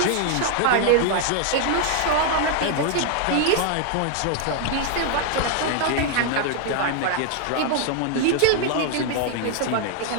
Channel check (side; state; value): both; different; correlation 0.00